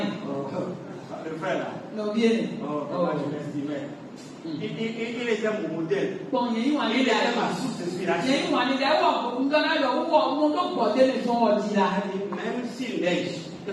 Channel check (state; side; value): identical; both; correlation 1.00